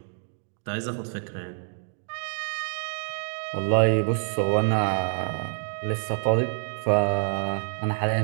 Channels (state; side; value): silent; left; digital silence